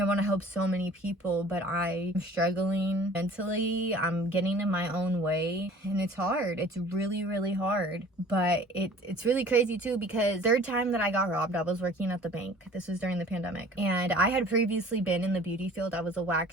want to help so many people, but I'm struggling mentally. I'm getting in my own way and it's hard. It's really hard, but it's really crazy too because third time that I got robbed, I was working at the bank. This was during the pandemic, and I had previously been in the beauty field. I was a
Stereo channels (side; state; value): both; normal; correlation 0.48